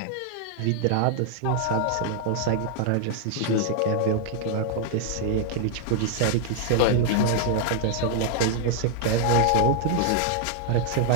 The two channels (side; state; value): both; different; correlation 0.00